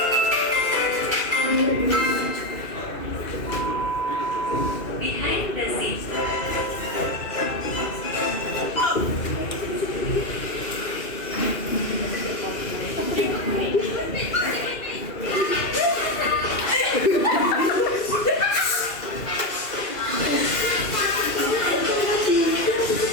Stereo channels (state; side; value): late; right; 2.4 ms